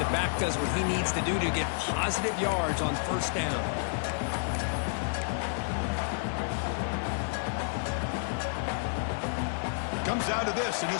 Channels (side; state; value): right; silent; digital silence